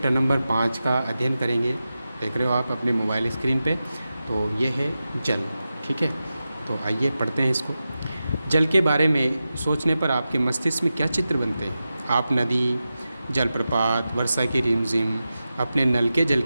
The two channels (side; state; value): both; inverted; correlation -0.92